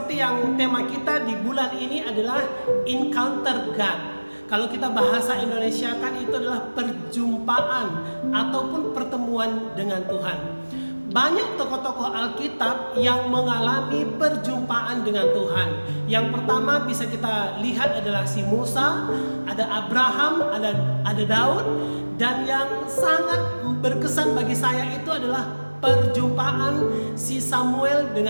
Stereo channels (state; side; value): inverted; both; correlation -1.00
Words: yang tema kita di bulan ini adalah Encounter God. Kalau kita bahasa Indonesia kan itu adalah perjumpaan ataupun pertemuan dengan Tuhan. Banyak tokoh-tokoh Alkitab yang mengalami perjumpaan dengan Tuhan. Yang pertama bisa kita lihat adalah si Musa, ada Abraham, ada Daud. Dan yang sangat berkesan bagi saya itu adalah perjumpaan si Samuel